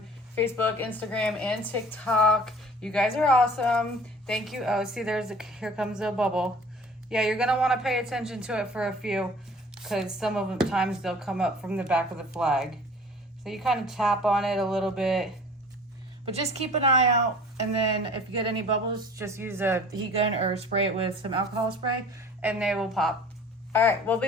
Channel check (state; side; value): normal; both; correlation 0.46